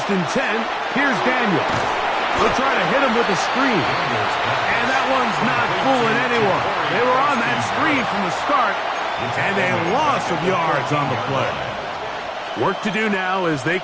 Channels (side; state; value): both; identical; correlation 1.00